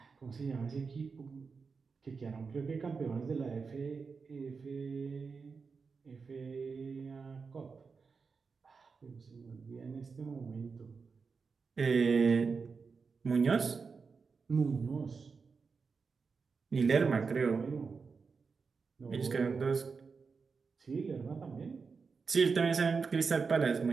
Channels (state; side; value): quieter; left; 5.0 dB